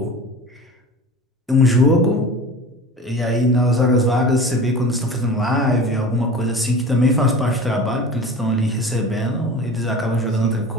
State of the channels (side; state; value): both; normal; correlation 0.36